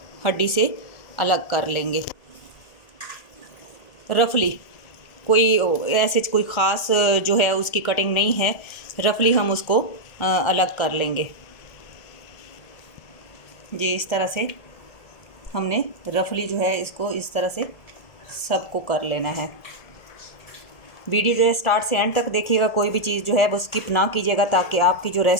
हड्डी से अलग कर लेंगे। रफली कोई ऐसे कोई ख़ास जो है उसकी कटिंग नहीं है, रफली हम उसको अलग कर लेंगे जी। इस तरह से हमने रफली जो है इसको इस तरह से सबको कर लेना है। वीडियो जो है स्टार्ट से एंड तक देखिएगा, कोई भी चीज़ जो है वो स्किप ना कीजिएगा ताकि आपकी जो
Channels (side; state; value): right; late; 1.4 ms